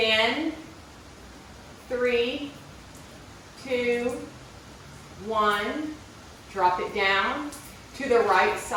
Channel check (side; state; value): both; identical; correlation 1.00